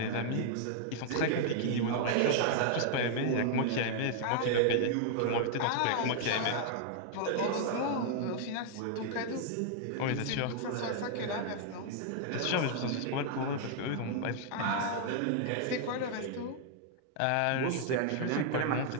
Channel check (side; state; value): both; different; correlation 0.00